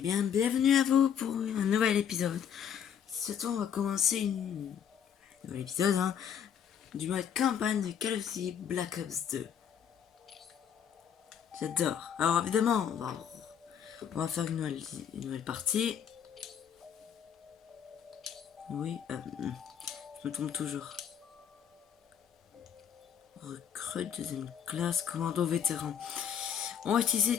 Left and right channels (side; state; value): right; quieter; 8.4 dB